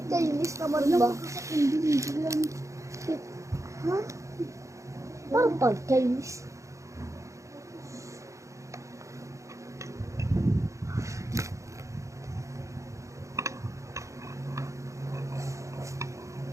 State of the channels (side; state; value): left; late; 0.15 ms